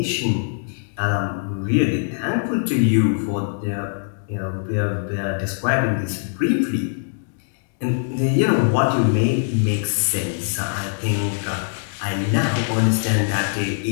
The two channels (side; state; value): right; silent; digital silence